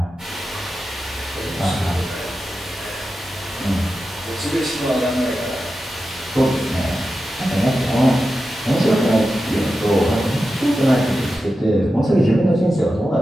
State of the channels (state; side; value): normal; both; correlation 0.91